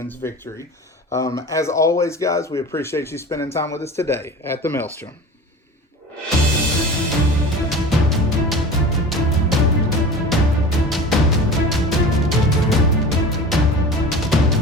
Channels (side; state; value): both; normal; correlation 0.36